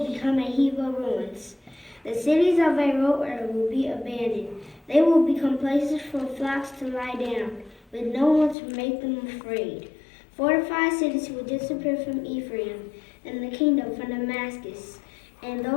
become a heap of ruins. The cities of Aroer will be abandoned. They will become places for flocks to lie down, with no one to make them afraid. Fortified cities will disappear from Ephraim, and the kingdom from Damascus, and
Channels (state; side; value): drops out; right; at 8.6 s